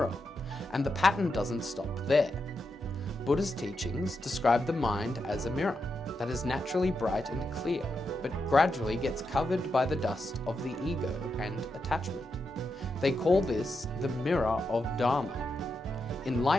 and the pattern doesn't stop there. Buddha's teachings describe the mind as a mirror that is naturally bright and clear, but gradually gets covered by the dust of the ego and attachment. They call this the mirror of Dharma.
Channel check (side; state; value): both; normal; correlation 0.85